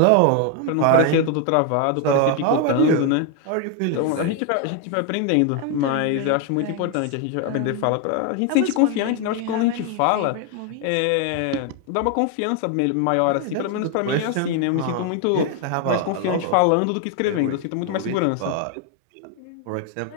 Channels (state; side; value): different; both; correlation 0.01